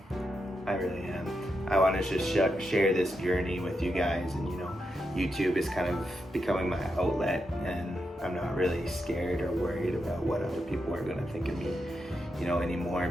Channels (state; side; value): normal; both; correlation 0.85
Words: I really am. I want to just share this journey with you guys, and you know, YouTube is kind of becoming my outlet, and I'm not really scared or worried about what other people are going to think of me, you know, anymore,